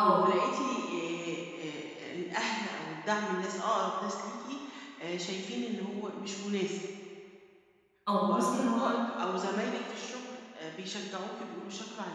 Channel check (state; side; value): identical; both; correlation 1.00